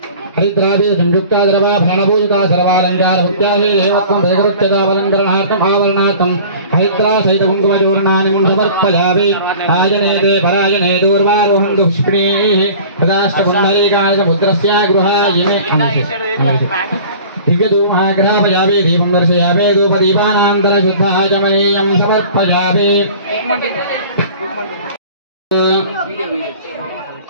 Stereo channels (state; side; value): inverted; both; correlation -0.44